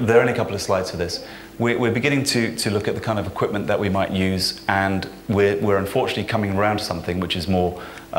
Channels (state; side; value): identical; both; correlation 1.00